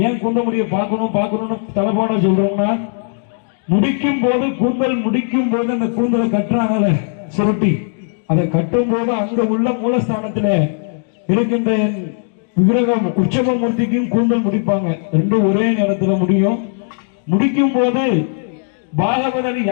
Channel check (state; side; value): silent; right; 66 dB below the other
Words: ஏன் கூந்தல் முடிய பார்க்கணும்னு தலைப்பாட சொல்றோம்னா, முடிக்கும் போது கூந்தல் முடிக்கும் போது அந்த கூந்தலை கட்டுறாங்கல்ல சுருட்டி, அதை கட்டும் போது அங்க உள்ள மூலஸ்தானத்துல இருக்கின்ற விக்கிரகம் உற்சவமூர்த்திக்கும் கூந்தல் முடிப்பாங்க. ரெண்டும் ஒரே நேரத்துல முடியும். முடிக்கும் போது பாகவதர்